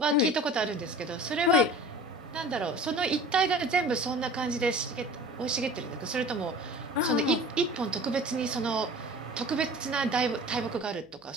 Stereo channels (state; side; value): noise; right; hum, 30 dB below the sound